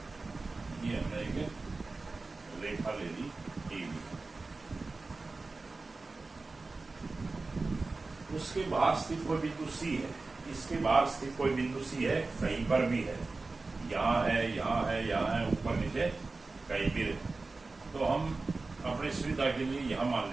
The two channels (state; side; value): quieter; left; 3.6 dB